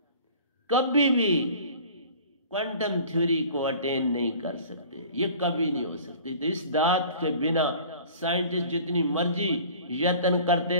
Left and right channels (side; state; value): both; inverted; correlation -0.45